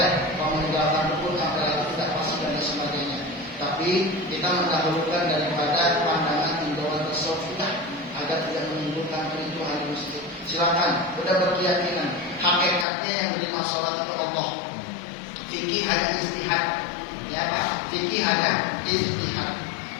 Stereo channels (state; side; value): drops out; right; at 12.9 s